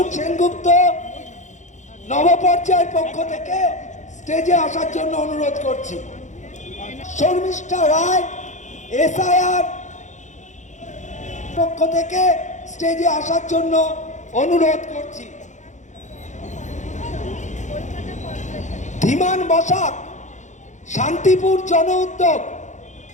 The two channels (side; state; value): right; late; 0.35 ms